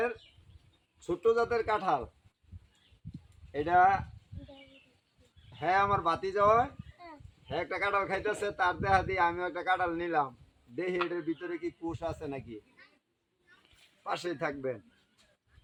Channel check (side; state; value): both; identical; correlation 1.00